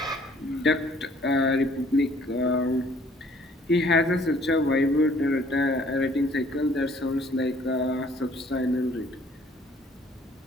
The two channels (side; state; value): both; normal; correlation 0.58